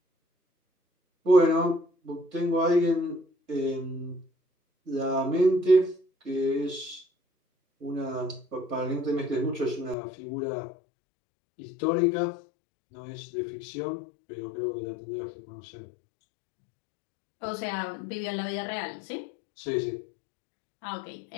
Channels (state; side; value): drops out; right; at 10.0 s